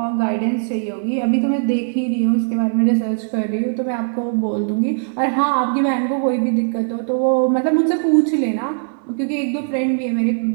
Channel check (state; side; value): silent; left; digital silence